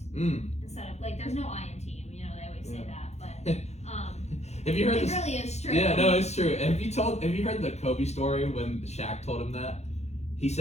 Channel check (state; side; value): late; right; 0.32 ms